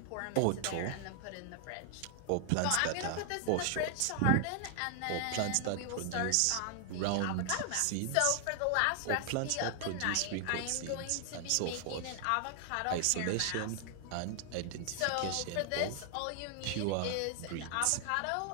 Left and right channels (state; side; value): different; both; correlation 0.00